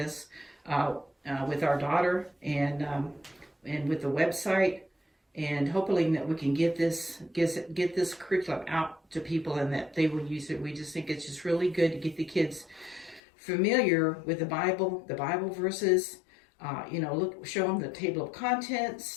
with our daughter and with the website, and hoping that we can get this curriculum out to people and that they will use it. We just think it's just really good to get the kids familiar with the Bible verses. Show them the table of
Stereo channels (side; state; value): right; drops out; at 13.2 s